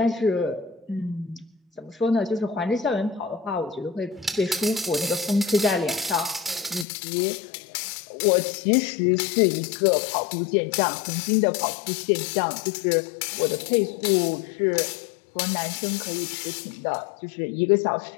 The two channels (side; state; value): right; drops out; at 6.9 s